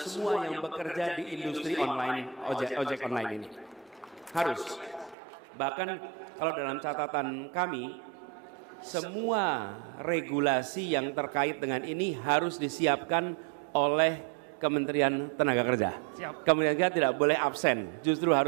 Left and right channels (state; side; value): drops out; left; at 5.2 s